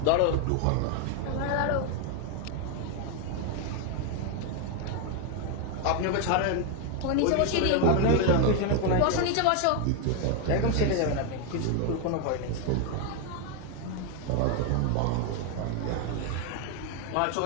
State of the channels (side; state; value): both; different; correlation 0.01